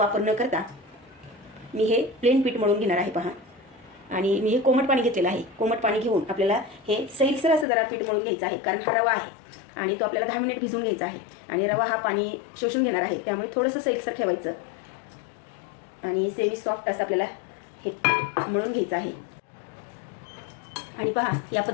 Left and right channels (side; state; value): right; drops out; at 7.7 s